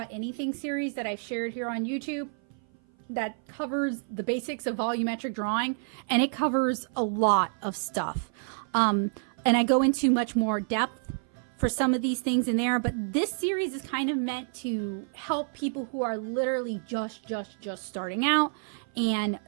Anything series that I've shared here on YouTube that covers the basics of volumetric drawing, and it covers a lot of stuff. And I go into much more depth for some of these things in there, but this series is kind of meant to help people who are literally just starting out, and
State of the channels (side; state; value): left; silent; 56 dB below the other